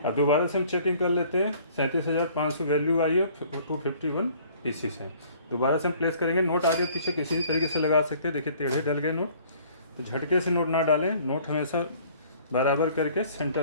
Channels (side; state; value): both; inverted; correlation -0.55